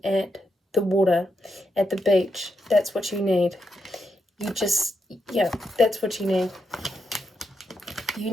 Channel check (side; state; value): both; normal; correlation 0.82